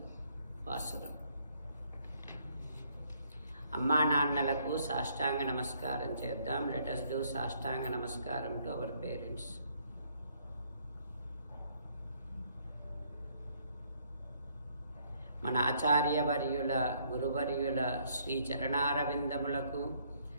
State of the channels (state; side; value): inverted; both; correlation -0.67